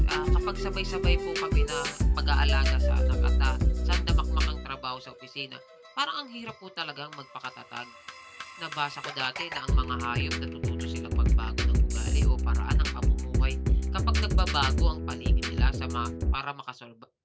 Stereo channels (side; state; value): both; identical; correlation 1.00